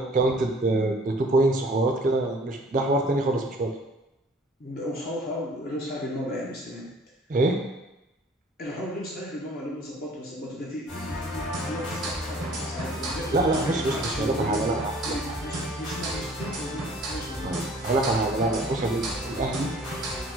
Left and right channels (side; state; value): both; normal; correlation 0.52